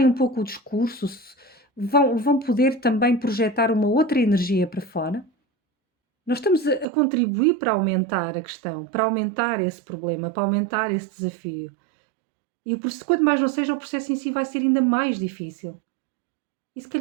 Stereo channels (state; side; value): drops out; left; at 6.9 s